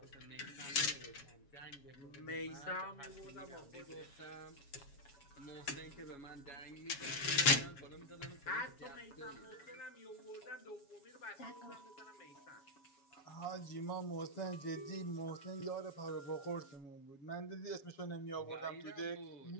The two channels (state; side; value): late; right; 7.2 ms